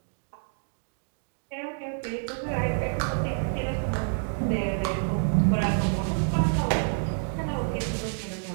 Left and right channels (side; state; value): left; silent; 59 dB below the other